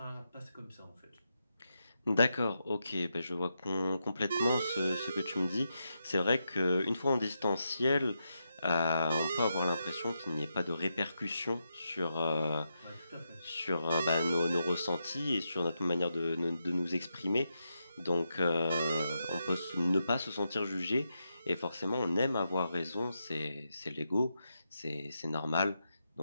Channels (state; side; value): inverted; both; correlation -0.85